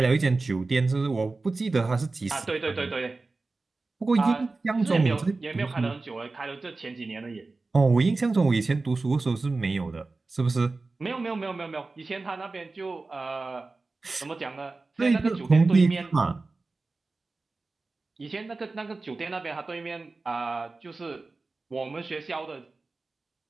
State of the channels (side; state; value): left; quieter; 3.6 dB